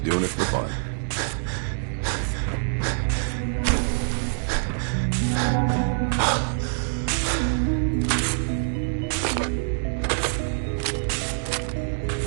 doing it for fun.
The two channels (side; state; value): left; silent; digital silence